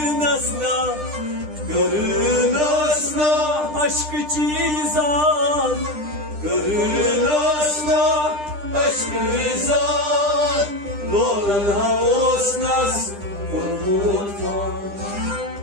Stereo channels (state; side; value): late; left; 9.9 ms